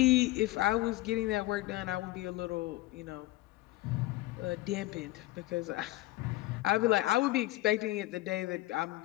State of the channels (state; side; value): quieter; right; 18.1 dB